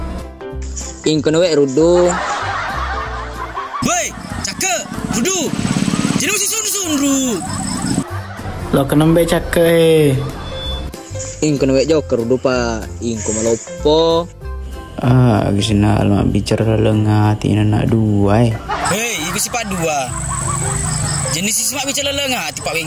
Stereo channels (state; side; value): identical; both; correlation 1.00